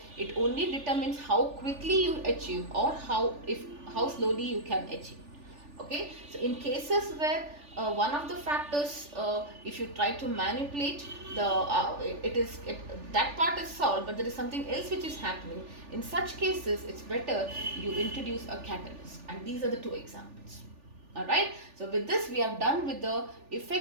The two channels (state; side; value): late; left; 3.4 ms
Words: It only determines how quickly you achieve or how slowly you can achieve. Okay, so in cases where one of the factors, if you try to manipulate that part is solved, but there is something else which is happening. In such cases, it's better you introduce a catalyst, and these are the two examples. Alright, so with this we have done with the